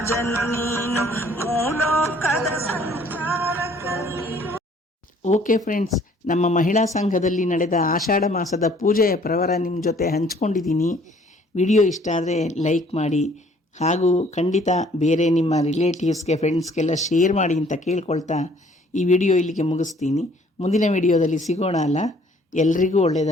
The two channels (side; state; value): both; normal; correlation 0.58